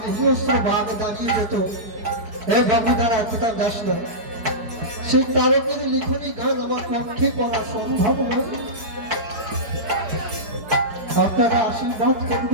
হিংস্র বাঘ দাঁড়িয়ে যেত, এ বাবুদারা কোথা যাস না, সেই তারকের লিখনী গান আমার পক্ষে পড়া সম্ভব নয়। আপনারা আশীর্বাদ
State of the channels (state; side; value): late; left; 4.8 ms